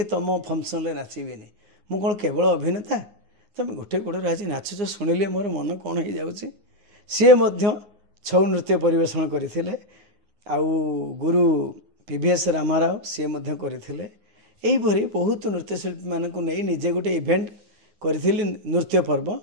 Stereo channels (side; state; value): left; late; 9.6 ms